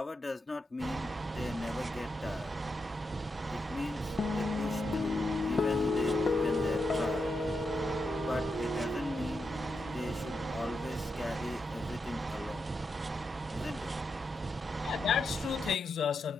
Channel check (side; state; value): both; normal; correlation 0.85